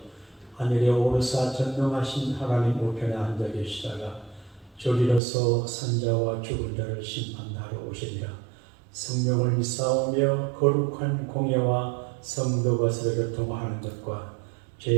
하늘에 오르사 전능하신 하나님 우편에 앉아 계시다가 저리로서 산자와 죽은 자를 심판하러 오시리라. 성령을 믿사오며 거룩한 공예와 성도 것을 교통하는 것과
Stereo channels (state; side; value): drops out; left; at 5.2 s